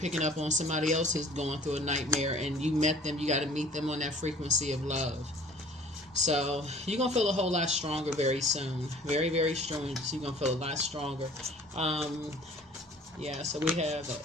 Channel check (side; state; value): both; normal; correlation 0.50